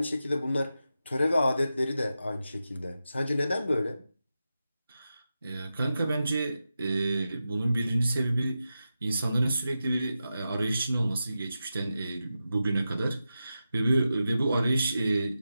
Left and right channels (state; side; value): inverted; both; correlation -0.90